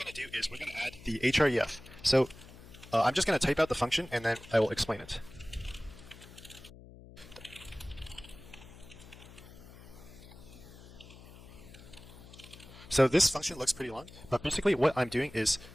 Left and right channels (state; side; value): noise; left; hum, 19 dB below the sound